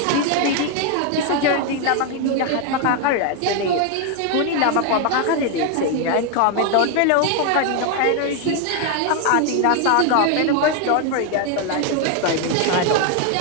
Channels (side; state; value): both; different; correlation 0.01